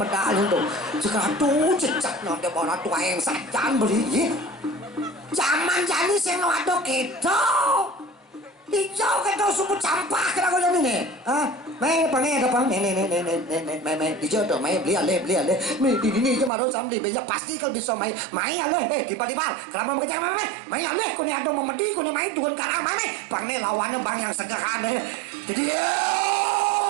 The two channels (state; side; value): drops out; left; at 16.5 s